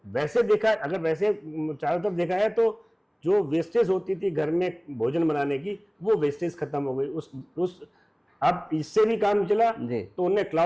वैसे देखा, अगर वैसे चारों तरफ देखा है तो जो वेस्टेज होती थी घर में भोजन बनाने की, वो वेस्टेज खत्म हो गई। उस अब इससे भी काम चला तो उन्होंने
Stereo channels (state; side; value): identical; both; correlation 1.00